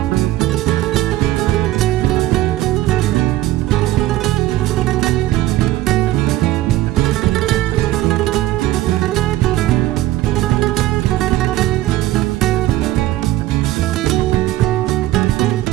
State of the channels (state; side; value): quieter; left; 15.5 dB